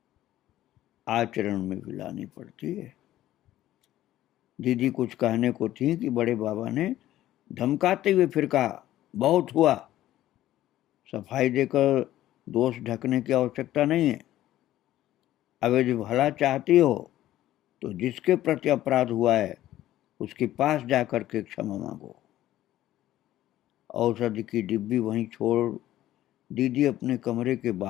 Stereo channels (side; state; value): right; quieter; 13.9 dB